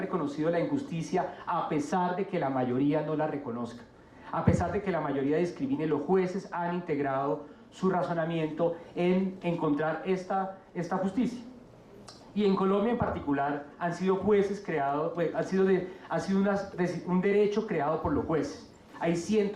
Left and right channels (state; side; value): identical; both; correlation 1.00